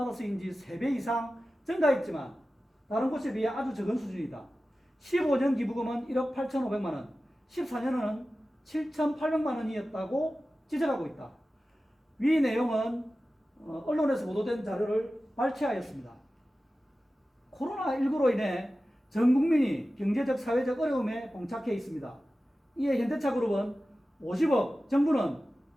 3배 이상 증가했지만 다른 곳에 비해 아주 적은 수준이다. 15년 기부금은 1억 8,500만 원, 14년은 7,800만 원이었다고 지적하고 있다. 위 내용은 언론에서 보도된 자료를 발췌하였습니다. 코로나19로 인해 전 국민이 경제적, 사회적 어려움에 봉착해 있습니다. 이에 현대차그룹은 50억, 정부는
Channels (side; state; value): both; normal; correlation 0.95